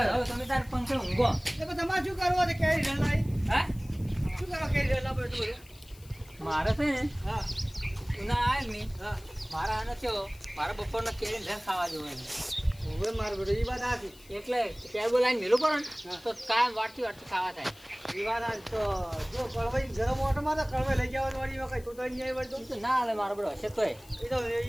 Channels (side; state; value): left; noise; hiss, 24 dB below the sound